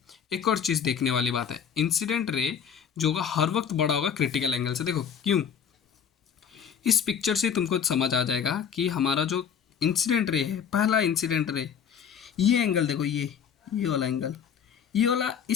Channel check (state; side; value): quieter; right; 7.8 dB